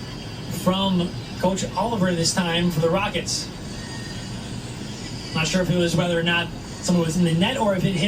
from Coach Oliver this time for the Rockets. Not sure if it was whether or not someone was in the net or if it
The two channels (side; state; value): both; identical; correlation 1.00